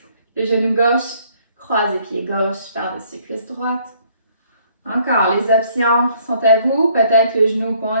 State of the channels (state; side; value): inverted; both; correlation -0.63